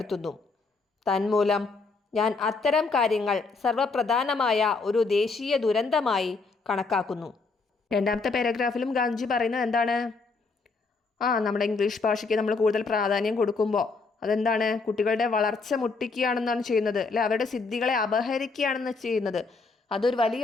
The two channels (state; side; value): quieter; right; 4.2 dB